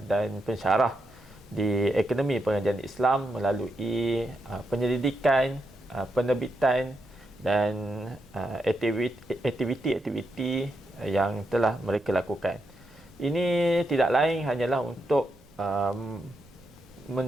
dan pensyarah di Akademi Pengajian Islam melalui penyelidikan, penerbitan dan aktiviti-aktiviti yang telah mereka lakukan. Ini tidak lain hanyalah untuk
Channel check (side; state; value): right; noise; rumble, 28 dB below the sound